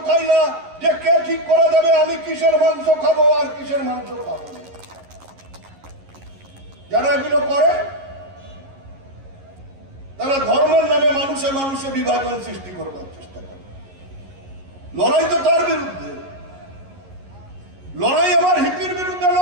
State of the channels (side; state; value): left; late; 11 ms